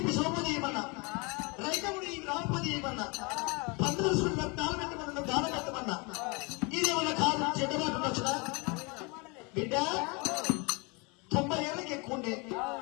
ఇప్పి సోమోది చేయమన్నా, రైతముడి రామపతి చేయమన్నా, 15 రోజులు దానం పెట్టమన్నా, దానం పెట్టమన్నా. ఇదేమన్నా కాదు, చెడ్డమాట వచ్చునా? బిడ్డ 90 ఏళ్ళకి ఎక్కువ ఉండే,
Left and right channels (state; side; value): quieter; right; 29.4 dB